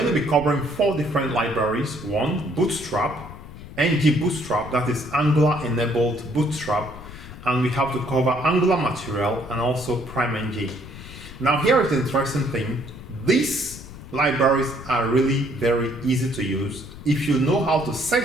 to be covering 4 different libraries. One, Bootstrap, NgBootstrap, that is Angular enabled Bootstrap, and we have to cover Angular material and also PrimeNg. Now here is the interesting thing. These libraries are really very easy to use if you know how to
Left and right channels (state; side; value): noise; left; rumble, 15 dB below the sound